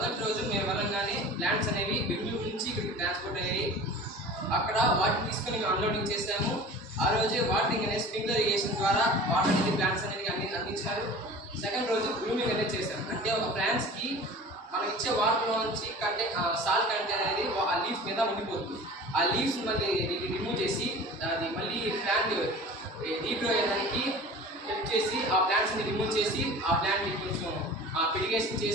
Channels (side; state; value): both; normal; correlation 0.39